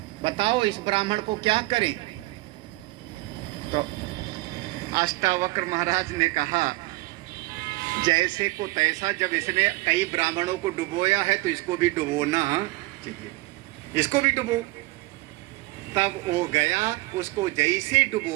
बताओ इस ब्राह्मण को क्या करें। तो अष्टावक्र महाराज ने कहा जैसे को तैसा, जब इसने कई ब्राह्मणों को डुबोया है तो इसको भी डुबोना चाहिए, इसको भी डुबो। तब वो गया, उसको जैसे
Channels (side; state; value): left; quieter; 21.7 dB